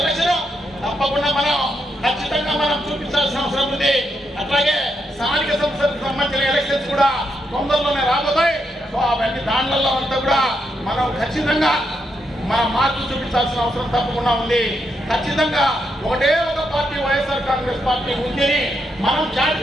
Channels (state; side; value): normal; both; correlation 0.81